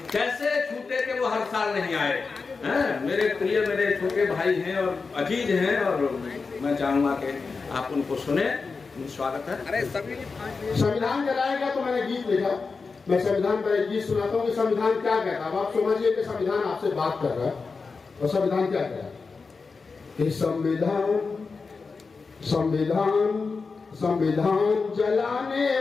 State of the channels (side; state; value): right; quieter; 4.6 dB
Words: कैसे छूटे के वो हर साल नहीं आए हैं। मेरे प्रिय मेरे छोटे भाई हैं और अजीज हैं और मैं चाहूंगा कि आप उनको सुने। स्वागत है। अरे सभी संविधान जलाएगा तो मैंने गीत लिखा, मैं संविधान पर एक गीत सुनाता हूँ कि संविधान क्या कहता है। अब आप समझिए कि संविधान आपसे बात कर रहा है और संविधान क्या कह रहा है कि संविधान संविधान संविधान जलाने